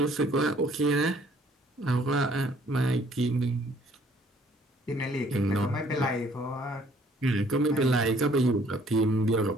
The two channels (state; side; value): normal; both; correlation 0.60